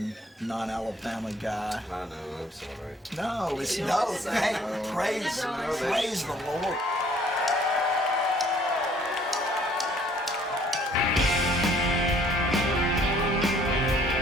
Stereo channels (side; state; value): both; normal; correlation 0.59